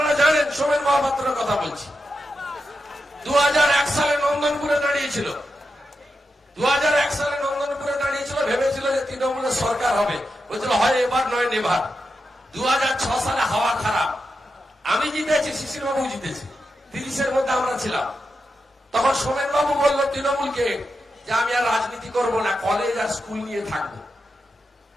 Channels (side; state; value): both; normal; correlation 0.88